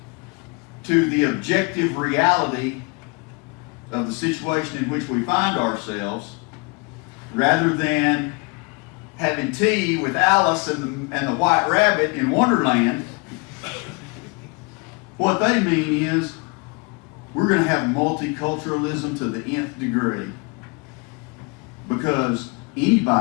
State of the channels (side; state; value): right; quieter; 30.8 dB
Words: to the objective reality of the situation in which we find ourselves, rather than having tea with Alice and the White Rabbit in Wonderland, what they mean is we're going to have multiculturalism to the nth degree, because